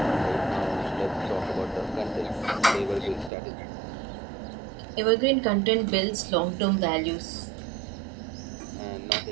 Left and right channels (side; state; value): left; drops out; at 3.3 s